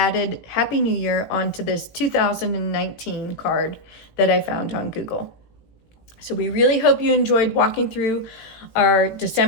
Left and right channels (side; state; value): right; late; 18 ms